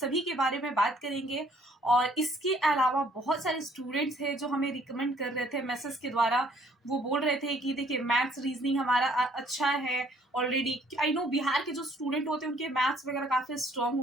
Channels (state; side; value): normal; both; correlation 0.61